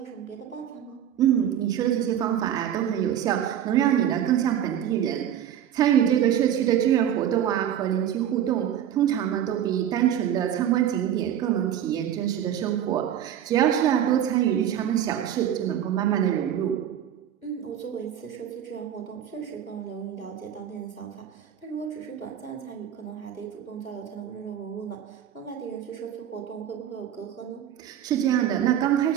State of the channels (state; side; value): quieter; left; 10.1 dB